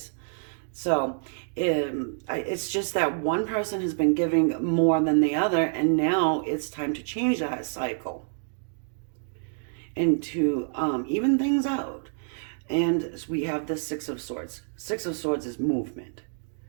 So it's just that one person has been giving more than the other, and now it's time to change that cycle and to even things out. And we have the Six of Swords. Six of Swords is movement.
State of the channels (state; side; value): silent; left; digital silence